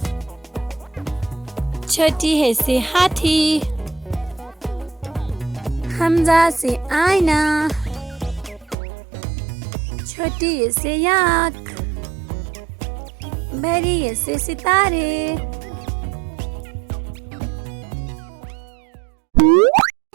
छोटी है से हाथी। हमजा से आईना। छोटी है से याक। बड़ी है से सितारे।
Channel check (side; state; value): left; drops out; at 8.8 s